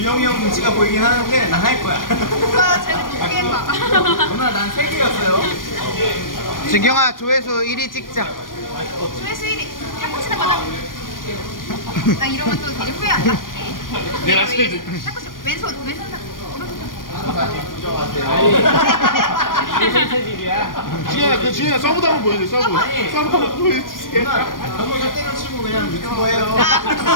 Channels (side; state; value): right; late; 0.90 ms